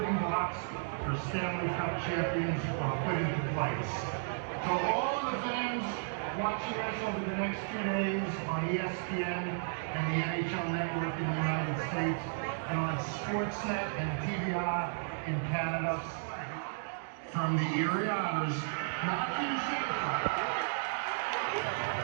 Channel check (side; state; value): left; silent; digital silence